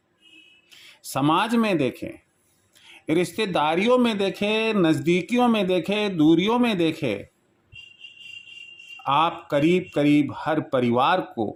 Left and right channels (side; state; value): both; identical; correlation 1.00